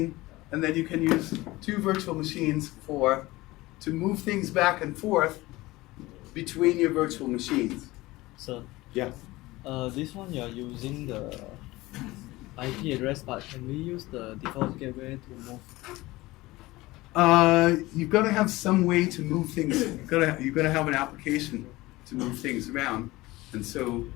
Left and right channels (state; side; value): quieter; right; 19.6 dB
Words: and then you can use two virtual machines to move things back and forth between your virtual machines. So, Yeah. this one you are using the IP address, but can we use the default gateway to move? You've got to have some way to move things. You've got to have an application to move things around, and so.